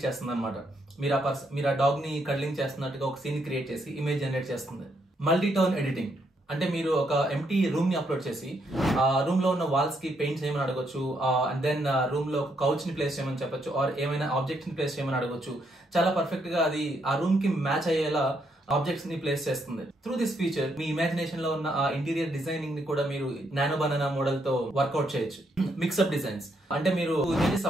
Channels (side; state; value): both; normal; correlation 0.75